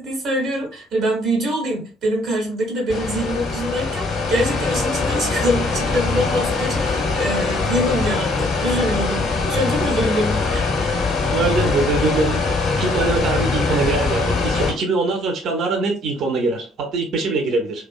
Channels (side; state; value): both; normal; correlation 0.63